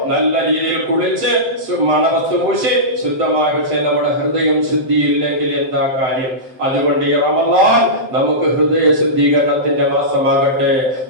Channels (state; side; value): late; left; 7.7 ms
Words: നല്ല രീതിയിൽ കുളിച്ച് മണവസ്തു പൂശി ശുദ്ധമായി, പക്ഷേ നമ്മുടെ ഹൃദയം ശുദ്ധിയില്ലെങ്കിൽ എന്താ കാര്യം? അതുകൊണ്ട് ഈ റമദാൻ നമുക്ക് ഹൃദയ ശുദ്ധീകരണത്തിന്റെ മാസമാകട്ടെ.